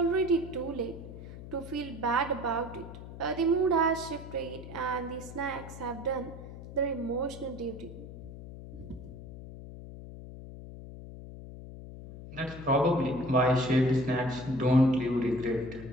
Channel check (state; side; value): noise; left; hum, 13 dB below the sound